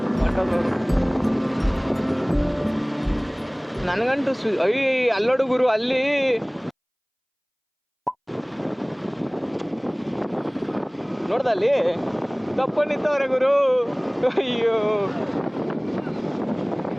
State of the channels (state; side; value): identical; both; correlation 1.00